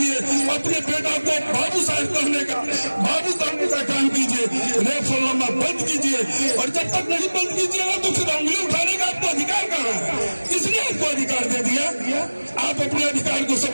अपने बेटा को बाबू साहब कहने का, बाबू कहने का काम कीजिए, रेफरंडम बंद कीजिए। और जब तक नहीं बंद कीजिएगा तो फिर उंगली उठाने का आपको अधिकार कहाँ है? किसने आपको अधिकार दे दिया? आप अपने अधिकार को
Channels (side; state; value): both; inverted; correlation -1.00